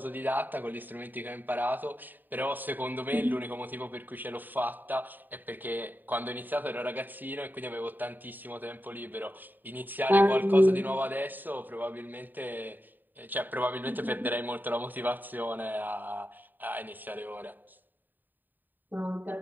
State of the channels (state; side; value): late; left; 0.090 ms